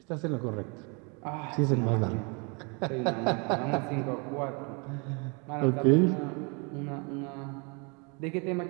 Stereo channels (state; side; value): quieter; left; 32.7 dB